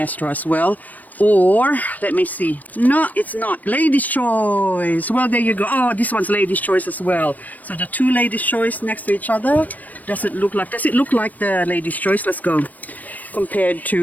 as well. Or, let me see. No, it's not. Ladies' Choice. Well, there you go. Oh, this one's Ladies' Choice as well. So the two Ladies' Choice next to each other. Does it look like the Ladies' Choice? Let's go. Compared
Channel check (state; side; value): late; right; 0.080 ms